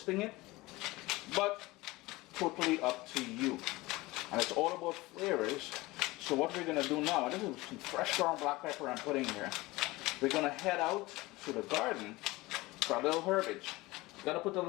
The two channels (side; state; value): right; quieter; 20.7 dB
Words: it. But totally up to you. And it's all about flavors. So what we're going to do now, this is some fresh ground black pepper I'm putting here. We're going to head out to the garden for a little herbage. Gotta put a